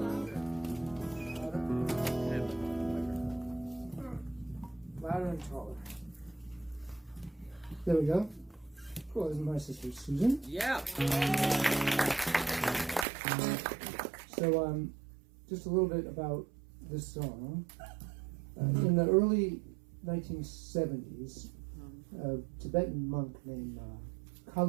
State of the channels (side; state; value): left; drops out; at 13.1 s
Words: Louder and taller. There we go. Cool. This is my sister Susan. Yeah. So, just a little bit about this song. In the early 1970s, a Tibetan monk named